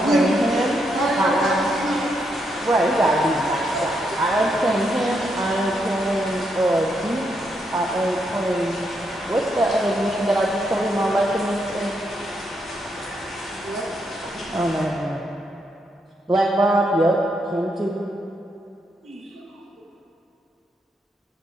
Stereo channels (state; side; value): normal; both; correlation 0.79